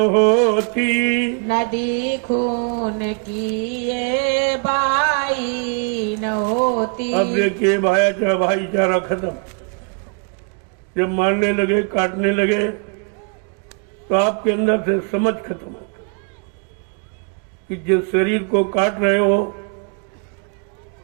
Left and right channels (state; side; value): quieter; left; 39.0 dB